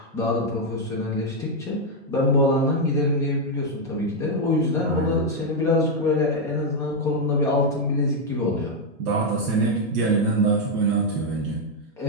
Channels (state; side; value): normal; both; correlation 0.01